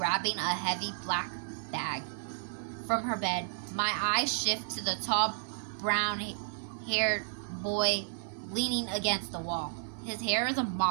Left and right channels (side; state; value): left; silent; 56 dB below the other